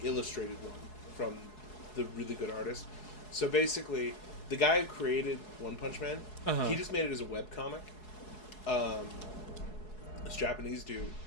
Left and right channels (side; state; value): right; late; 4.7 ms